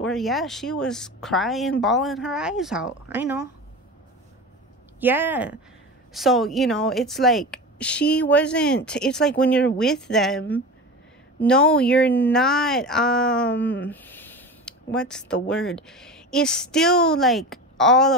yeah, she was crying, bawling her eyes out. I know. Yeah. So, you know, it's like she wasn't, it's like when you're with them, no, you're not, what's the word? It's still like all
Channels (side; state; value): both; normal; correlation 0.29